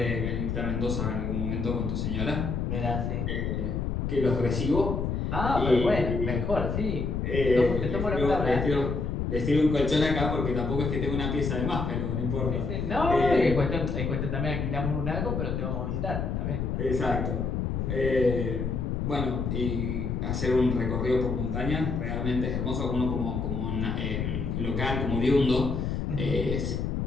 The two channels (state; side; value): noise; left; rumble, 1 dB below the sound